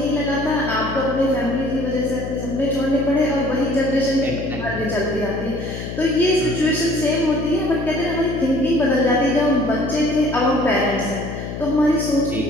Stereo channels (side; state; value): left; noise; hum, 7 dB below the sound